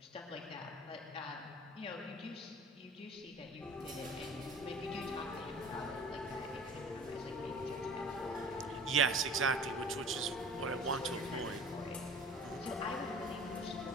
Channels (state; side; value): normal; both; correlation 0.44